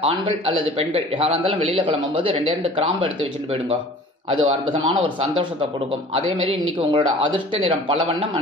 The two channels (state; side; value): normal; both; correlation 0.46